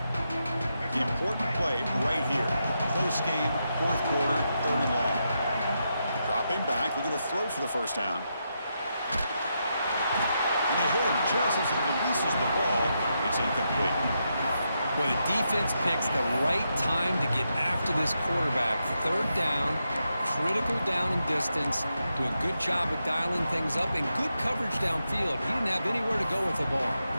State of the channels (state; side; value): inverted; both; correlation -0.84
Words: The important play right here. Close game, fourth quarter, third and long. Dropping back, looking to throw for the first down. And they hit him just as he releases the ball. It's incomplete. Well, the defense picks the right time to get after this quarterback. Third down, critical down and distance. Do a good job of dialing things up and good coverage downfield. He didn't have anywhere to go with the ball.